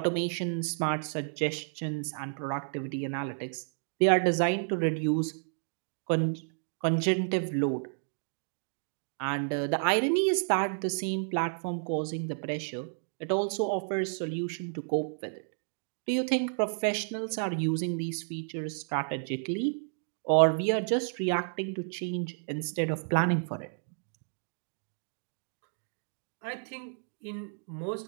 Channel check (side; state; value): left; silent; digital silence